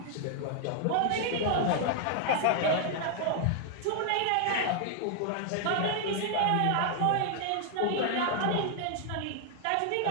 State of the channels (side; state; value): both; different; correlation 0.00